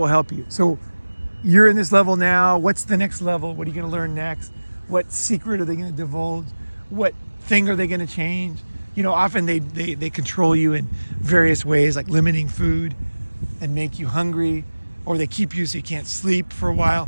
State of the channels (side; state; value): both; inverted; correlation -1.00